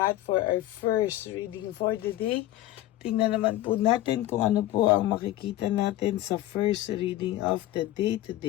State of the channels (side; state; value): right; quieter; 14.9 dB